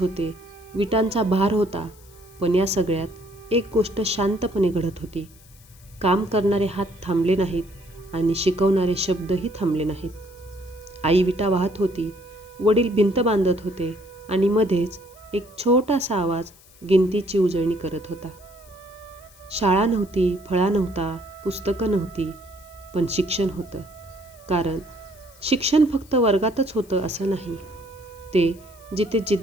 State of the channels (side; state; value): left; noise; hiss, 25 dB below the sound